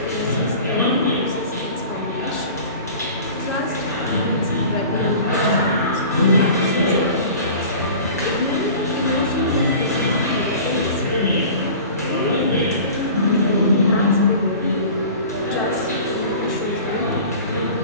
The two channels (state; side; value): inverted; both; correlation -0.41